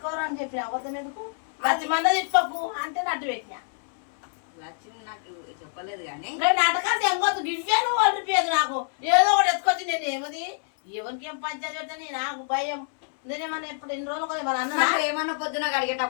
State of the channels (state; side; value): silent; right; 61 dB below the other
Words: అని చెప్పి అబద్ధం ఎందుకు లచ్చి మంద తిప్పకు అంటే నట్టు పెట్టినా లక్ష్మి నాకు చెప్పలేదు కానీ నాటకాలు ఎంగొద్దు గివ్వాను వాళ్ళు పేరు నాకు ఏదో ఒకటి ఎత్తుకొచ్చి నేను ఏమది ఎవరికి ఏం పంచాయతీ పెడతాను నాకు భయం నేనేమన్నా ఇప్పుడు ఎన్ని రోజులు మన అన్న ఏమన్నా పొద్దున